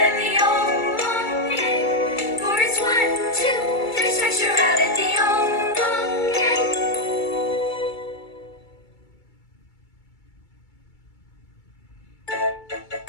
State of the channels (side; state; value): right; late; 2.3 ms